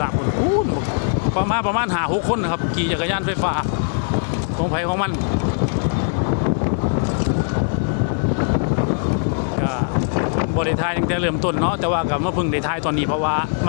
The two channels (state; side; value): silent; right; digital silence